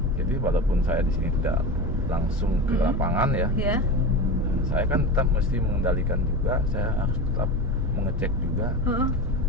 Jadi walaupun saya di sini tidak langsung ke lapangan ya. Iya. Saya kan tetap mesti mengendalikan juga, saya harus tetap mengecek juga.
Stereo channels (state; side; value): normal; both; correlation 0.26